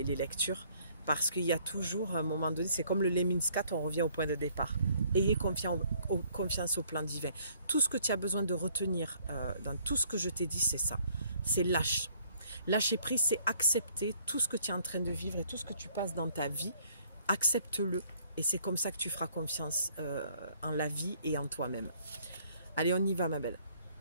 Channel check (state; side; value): inverted; both; correlation -0.62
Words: lectures. Parce qu'il y a toujours un moment donné, c'est comme le Lemniscat, on revient au point de départ. Ayez confiance au plan divin. Tout ce que tu as besoin de retenir dans tout ce que je t'ai dit, c'est ça. C'est lâche. Lâcher prise, c'est accepter tout ce que tu es en train de vivre et tout ce que tu passes dans ta vie. Accepte-le. Et c'est comme ça que tu feras confiance en la vie et en toi-même. Allez, on y va, ma belle.